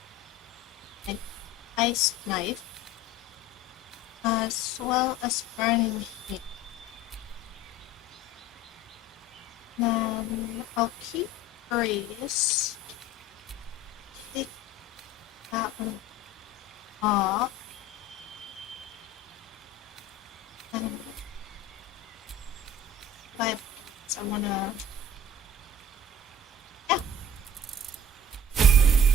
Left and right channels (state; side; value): normal; both; correlation 0.44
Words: an ice knife, as well as burning heat. Then I'll keep Breeze. Take that one off. And I wanna. Yeah.